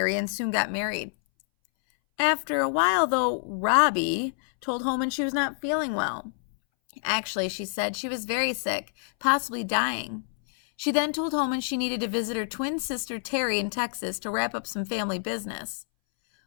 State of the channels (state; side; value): silent; right; 60 dB below the other